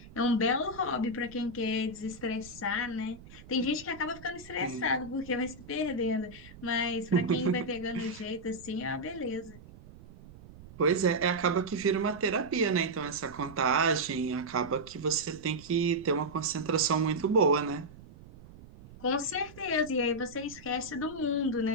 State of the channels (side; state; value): right; noise; rumble, 19 dB below the sound